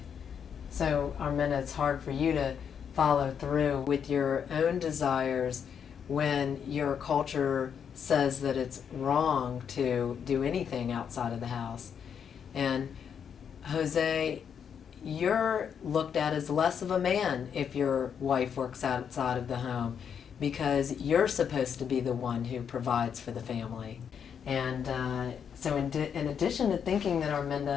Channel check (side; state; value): right; quieter; 7.6 dB